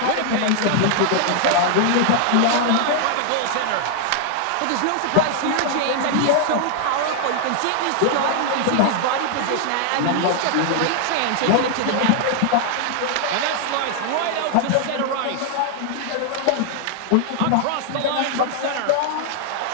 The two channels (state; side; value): different; both; correlation 0.00